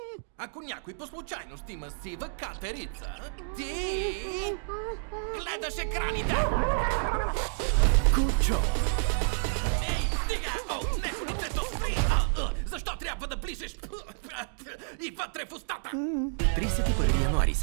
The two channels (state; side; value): silent; left; digital silence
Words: Ако някой по случайност има сива катерица, ти гледаш екраните. Кучо. Ей, стига! О, не, лицето спри! Защо трябва да ближеш и вътре в устата? 31 януари,